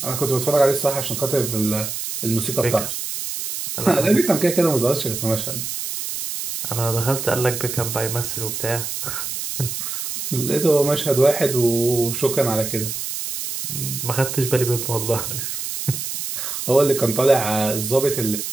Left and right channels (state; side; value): noise; right; hiss, 5 dB below the sound